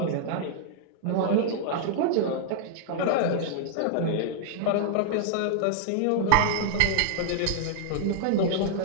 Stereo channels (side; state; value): both; different; correlation -0.01